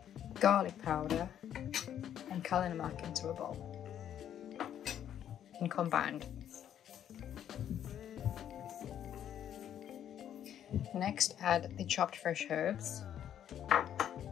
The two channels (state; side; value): quieter; right; 10.1 dB